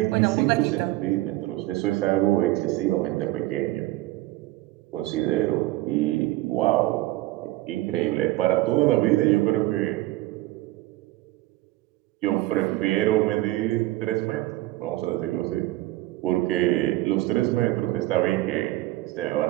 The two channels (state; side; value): quieter; left; 17.6 dB